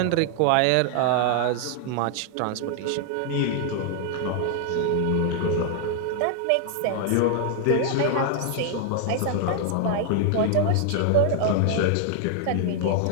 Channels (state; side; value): different; both; correlation 0.00